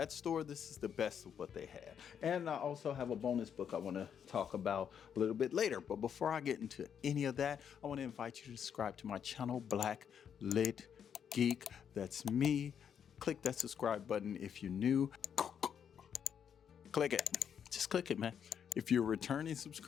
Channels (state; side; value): quieter; right; 8.1 dB